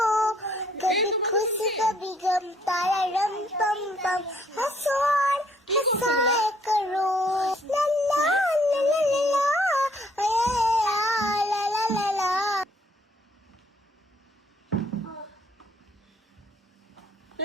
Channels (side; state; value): both; normal; correlation 0.65